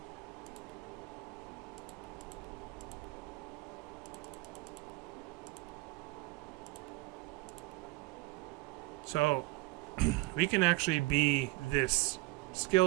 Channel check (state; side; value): quieter; left; 21.9 dB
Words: So, we can actually be this